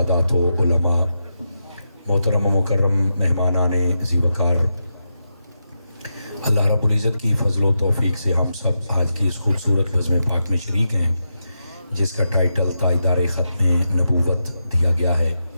و علماء، محترم و مکرم مہمانان ذی وقار، اللہ رب العزت کی فضل و توفیق سے ہم سب آج کی اس خوبصورت بزم پاک میں شریک ہیں جس کا ٹائٹل تاجدار ختم نبوت دیا گیا ہے۔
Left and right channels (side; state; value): both; inverted; correlation -0.87